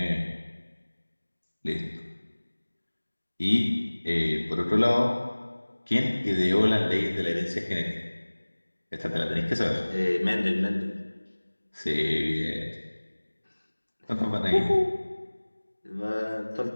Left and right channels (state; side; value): inverted; both; correlation -1.00